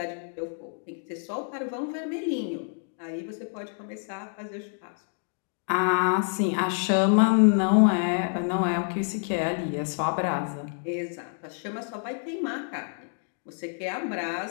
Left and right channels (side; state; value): right; silent; 59 dB below the other